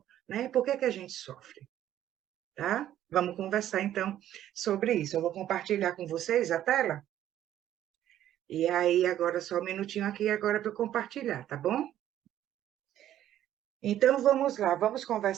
né? Por que é que a gente sofre, tá? Vamos conversar, então, sobre isso. Eu vou compartilhar com vocês a tela. E aí, agora só um minutinho aqui agora para eu compartilhar, tá bom? Então, vamos lá, vamos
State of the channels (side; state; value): left; quieter; 12.0 dB